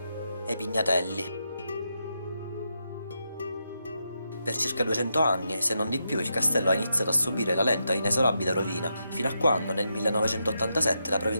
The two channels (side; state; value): both; inverted; correlation -0.84